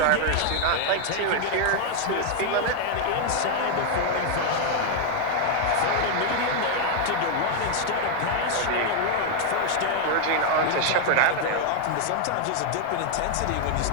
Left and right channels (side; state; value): both; different; correlation 0.00